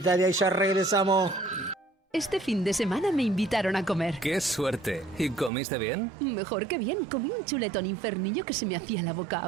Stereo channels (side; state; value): left; drops out; at 5.5 s